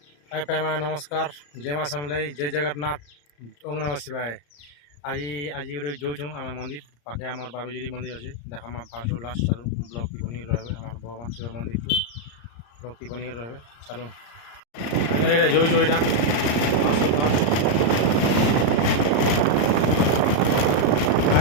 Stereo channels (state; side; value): late; right; 34 ms